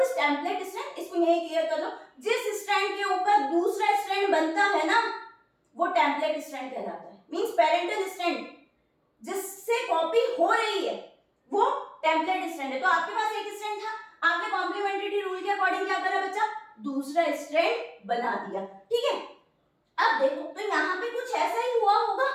टेम्पलेट स्ट्रैंड, इसको यही क्लियर कर लो। जिस स्ट्रैंड के ऊपर दूसरा स्ट्रैंड बनता है ना, वो टेम्पलेट स्ट्रैंड कहलाता है। मींस पेरेंटल स्ट्रैंड जिससे कॉपी हो रही है वो टेम्पलेट स्ट्रैंड है। तो आपके पास एक स्ट्रैंड था, आपने कॉम्प्लीमेंट्री रूल के अकॉर्डिंग क्या करा बच्चा? दूसरा स्ट्रैंड बना दिया, ठीक है। अब देखो, तो यहाँ पे कुछ ऐसा ही हुआ होगा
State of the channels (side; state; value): both; identical; correlation 1.00